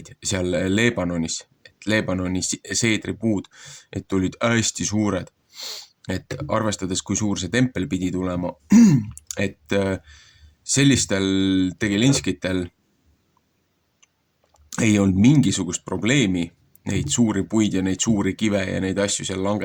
seal Leebanonis, Leebanoni seedripuud, et olid hästi suured, et arvestades, kui suur see tempel pidi tulema, et sellistel tegelinskitel ei olnud mingisugust probleemi neid suuri puid ja neid suuri kive ja neid asju seal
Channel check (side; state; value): both; identical; correlation 1.00